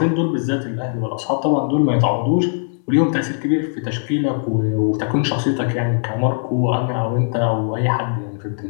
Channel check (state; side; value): silent; right; 66 dB below the other